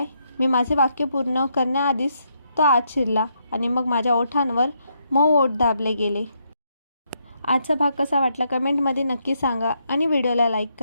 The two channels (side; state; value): both; inverted; correlation -0.77